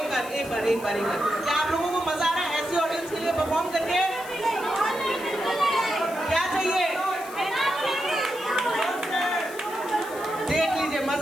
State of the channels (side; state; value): left; noise; hiss, 17 dB below the sound